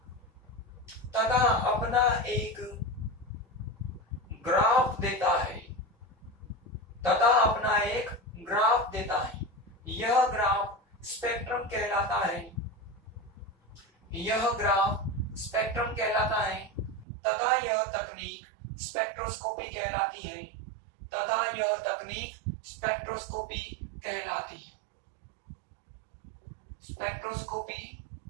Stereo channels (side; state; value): left; drops out; at 17.1 s